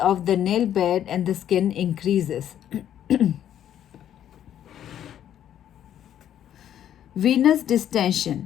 the nail bed and the skin increases. Venous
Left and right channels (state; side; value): quieter; right; 10.5 dB